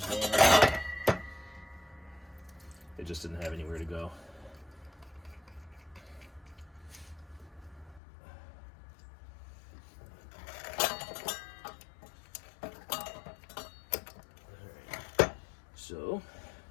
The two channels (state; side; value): drops out; right; at 8.0 s